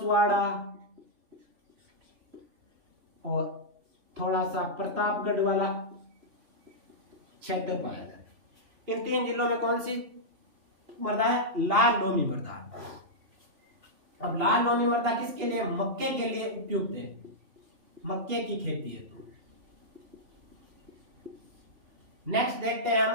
और थोड़ा सा प्रतापगढ़ वाला क्षेत्र पाया जाता है। इन 3 जिलों में कौन सी मृदा है लाल लोमी मृदा। अब लाल लोमी मृदा किसके लिए? मक्के के लिए उपयुक्त है, मक्के की खेती है। तो नेक्स्ट देखते हैं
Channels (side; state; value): left; late; 2.8 ms